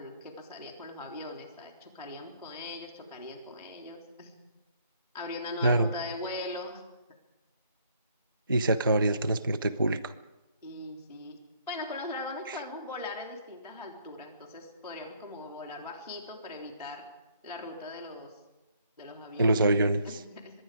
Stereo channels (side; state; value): both; inverted; correlation -0.65